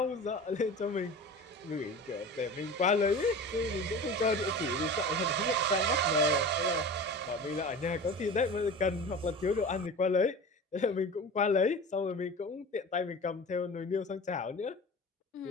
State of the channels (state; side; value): normal; both; correlation 0.34